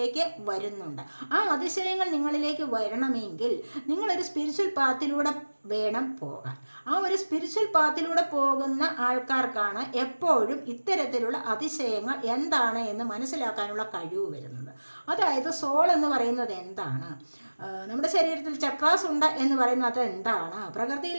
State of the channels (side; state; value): both; inverted; correlation -1.00